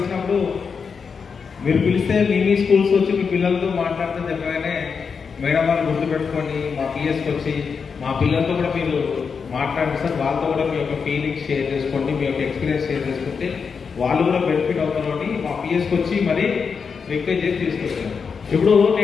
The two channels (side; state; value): right; quieter; 5.8 dB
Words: మీరు పిలిస్తే మీ స్కూల్స్ వచ్చి మీ పిల్లలతో మాట్లాడితే చెప్పగానే మేడం వాళ్ళు గుర్తుపెట్టుకొని మా పిఎస్కి వచ్చి మా పిల్లలతో కూడా మీరు మాట్లాడండి సార్, వాళ్ళతో కూడా మీ యొక్క ఫీలింగ్స్ షేర్ చేసుకోండి, మీ యొక్క ఎక్స్పీరియన్స్ షేర్ చేసుకుంటే వాళ్ళు కూడా బెనిఫిట్ అవుతారు అని మా పిఎస్కి వచ్చి మరీ రిక్వెస్ట్ చేసి తీసుకొచ్చాను. ఇప్పుడు